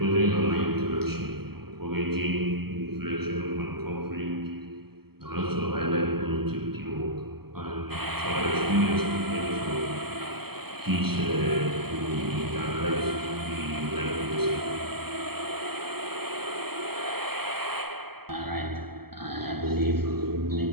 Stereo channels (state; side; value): late; left; 0.96 ms